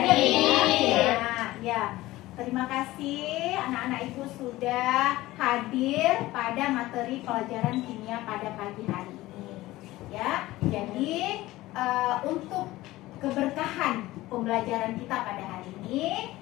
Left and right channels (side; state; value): right; quieter; 17.6 dB